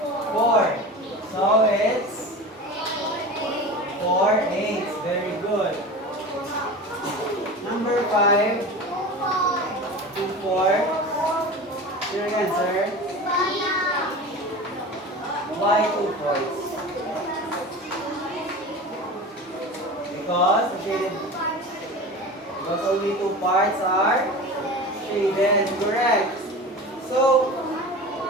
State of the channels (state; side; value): normal; both; correlation 0.32